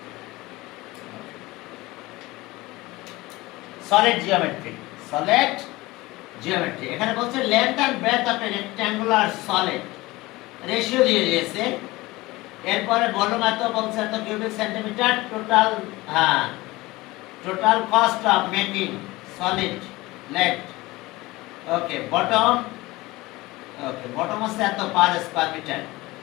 Solid geometry, solid geometry. এখানে বলছে length and breadth of a rectangular solid, ratio দিয়ে দিয়েছে। এরপরে ভলিউম এত বলছে এত cubic centimetre, total total cost of making solid let. Okay, bottom হচ্ছে এত পার স্কয়ার মিটার।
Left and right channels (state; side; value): quieter; right; 20.3 dB